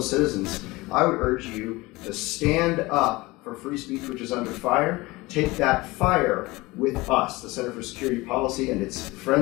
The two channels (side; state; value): right; quieter; 21.5 dB